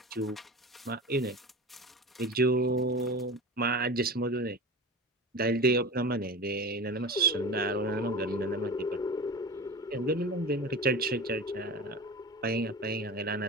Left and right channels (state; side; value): normal; both; correlation 0.31